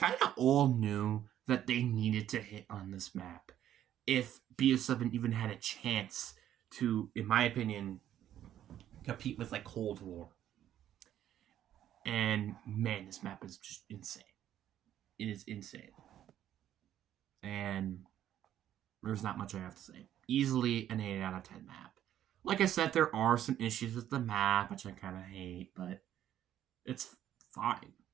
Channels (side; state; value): left; quieter; 11.4 dB